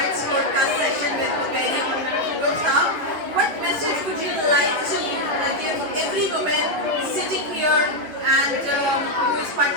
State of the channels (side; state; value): left; late; 10 ms